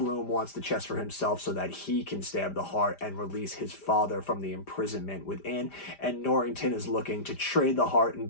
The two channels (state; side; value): late; right; 5.0 ms